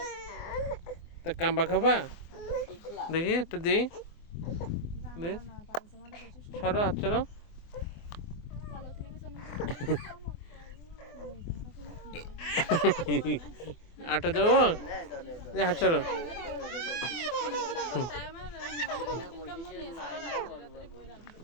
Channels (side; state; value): right; late; 24 ms